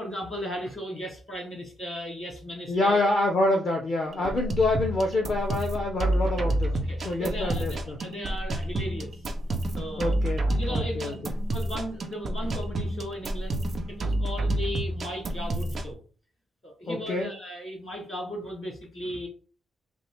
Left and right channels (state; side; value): normal; both; correlation 0.80